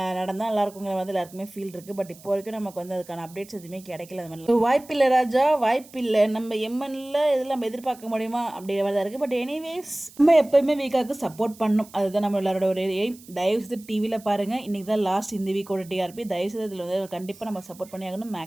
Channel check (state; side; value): noise; right; hiss, 22 dB below the sound